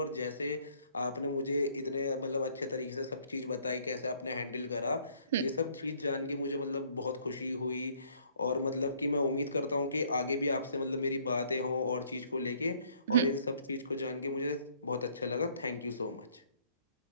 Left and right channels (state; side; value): inverted; both; correlation -0.62